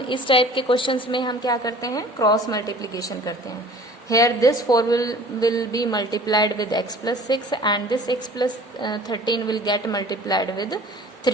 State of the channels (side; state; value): both; normal; correlation 0.47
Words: इस टाइप के क्वेश्चंस में हम क्या करते हैं, क्रॉस मल्टीप्लिकेशन करते हैं। Here this 4 will be multiplied with x plus 6 and this x plus 13 will get multiplied with